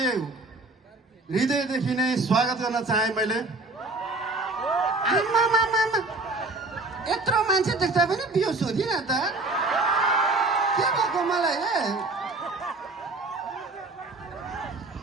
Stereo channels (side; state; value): left; quieter; 3.1 dB